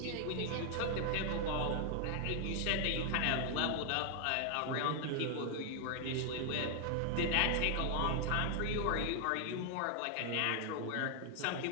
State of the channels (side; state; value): both; different; correlation 0.00